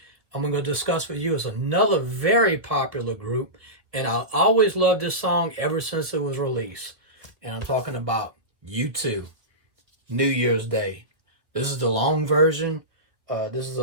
I'm going to discuss with you is another very popular group, and I always loved this song ever since it was released. And I'm talking about U2, New Year's Day. This is the long version. This is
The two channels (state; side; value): late; left; 1.9 ms